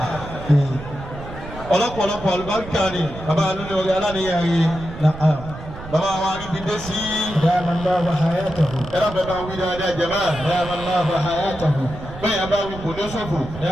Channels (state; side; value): noise; right; rumble, 13 dB below the sound